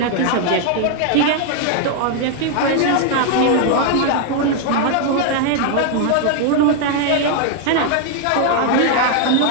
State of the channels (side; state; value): both; different; correlation 0.00